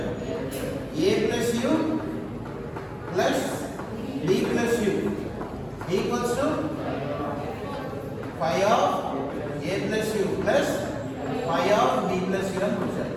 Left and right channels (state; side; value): identical; both; correlation 1.00